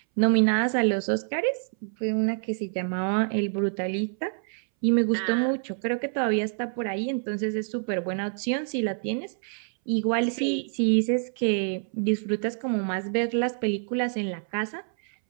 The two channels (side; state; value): left; silent; 60 dB below the other